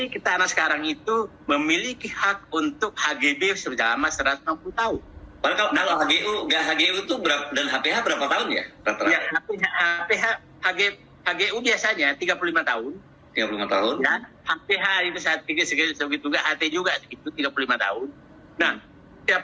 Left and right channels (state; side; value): identical; both; correlation 1.00